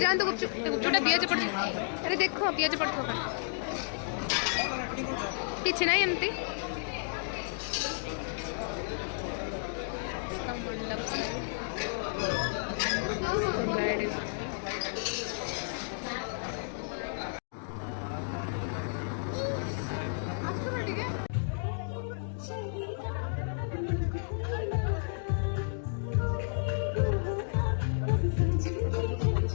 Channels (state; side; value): silent; right; digital silence